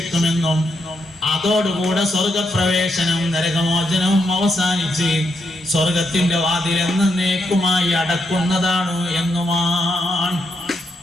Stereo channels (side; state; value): both; normal; correlation 0.80